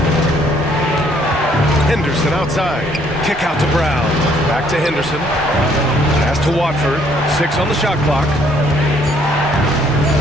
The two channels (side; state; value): both; normal; correlation 0.65